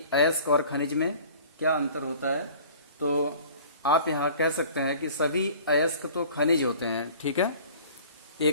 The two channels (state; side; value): inverted; both; correlation -0.46